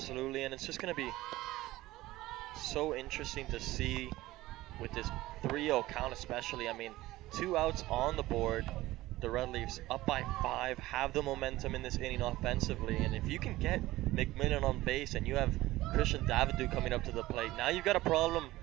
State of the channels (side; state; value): left; quieter; 17.3 dB